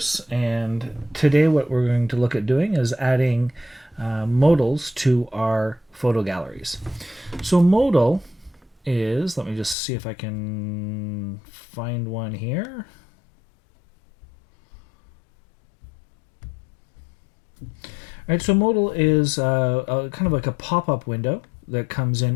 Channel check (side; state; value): right; drops out; at 9.8 s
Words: and today what we're going to look at doing is adding modals to our photo galleries. So modal is, let me just see if I can find one here. All right, so modal is kind of like a pop-up window that comes